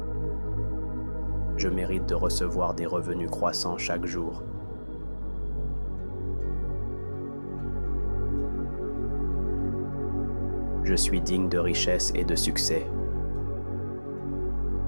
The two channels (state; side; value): inverted; both; correlation -1.00